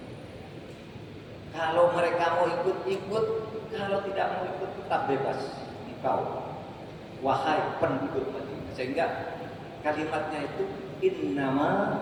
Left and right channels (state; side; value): identical; both; correlation 1.00